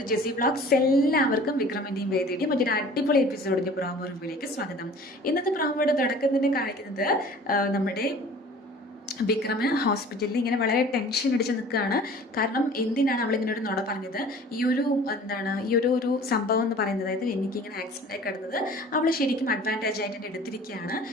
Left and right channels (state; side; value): normal; both; correlation 0.46